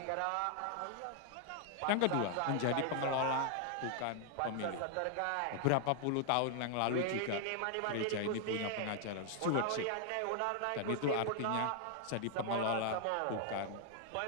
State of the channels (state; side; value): different; both; correlation 0.00